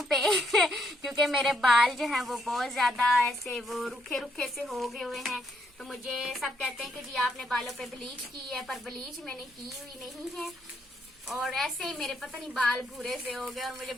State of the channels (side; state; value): both; normal; correlation 0.74